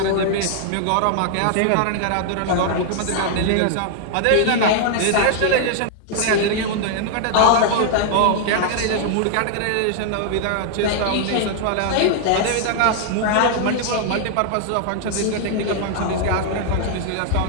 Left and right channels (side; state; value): both; different; correlation 0.00